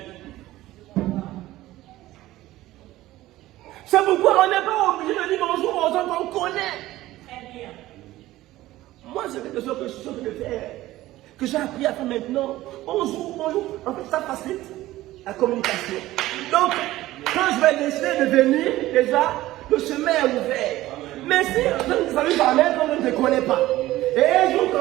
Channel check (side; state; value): left; quieter; 16.3 dB